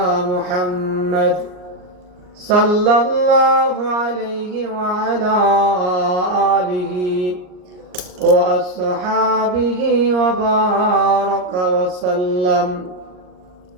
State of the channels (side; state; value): left; late; 39 ms